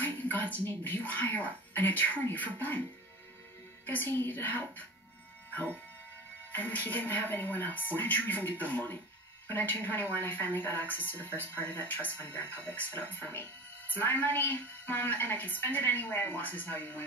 in God's name would you hire an attorney for Ben? Because he needed help. Help? And he didn't have anyone else. Where did you even get the money? When I turned 21, I finally got access to the first part of that trust fund Grandpa set up for me. It's my money, Mom, and I can spend it any way I want. This is how you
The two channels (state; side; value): normal; both; correlation 0.35